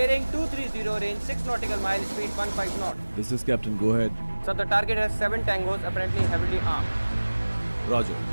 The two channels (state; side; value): inverted; both; correlation -1.00